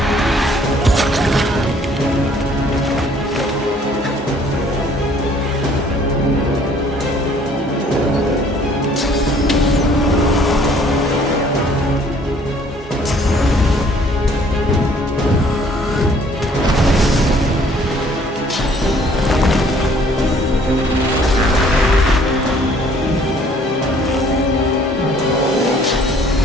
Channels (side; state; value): both; normal; correlation 0.59